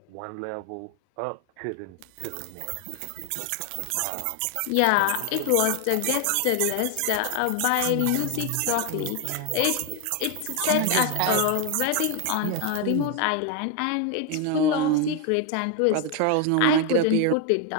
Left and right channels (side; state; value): both; different; correlation 0.01